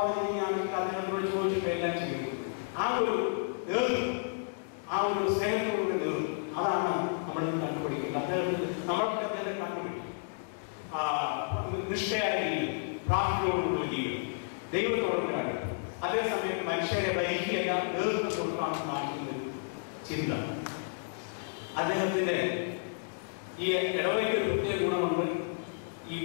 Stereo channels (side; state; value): right; silent; digital silence